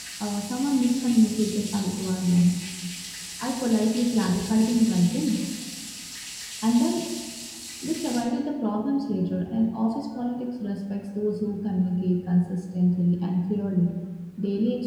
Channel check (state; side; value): identical; both; correlation 1.00